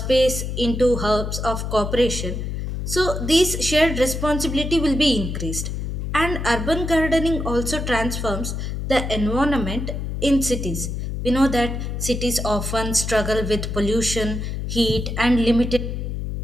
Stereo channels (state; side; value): noise; left; hum, 4 dB below the sound